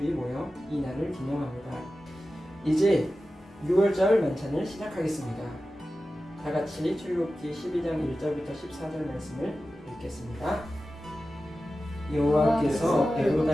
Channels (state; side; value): normal; both; correlation 0.94